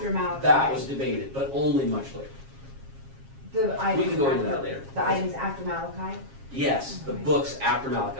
was, Malachi. that was debated, but only much later. The items can go into after- that later. The items after Malachi? Yes, the Okay. books after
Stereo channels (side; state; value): left; late; 7.4 ms